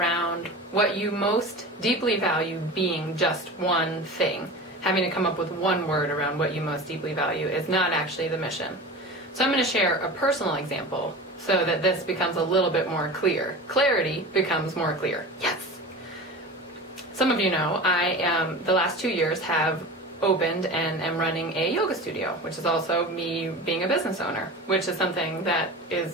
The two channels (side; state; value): both; normal; correlation 0.32